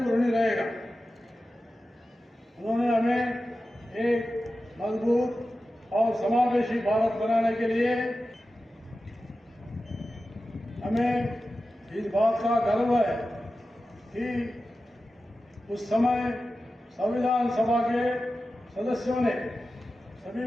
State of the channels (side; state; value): both; normal; correlation 0.93